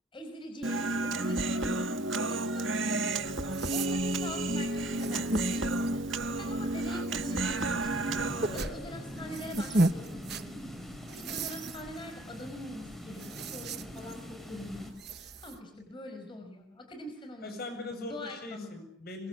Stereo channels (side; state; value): both; normal; correlation 0.57